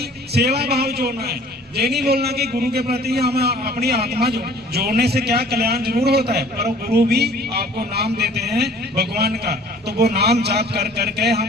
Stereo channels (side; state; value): both; normal; correlation 0.51